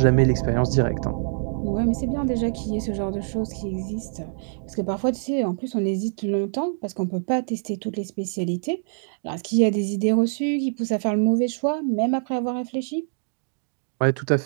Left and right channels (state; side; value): silent; left; digital silence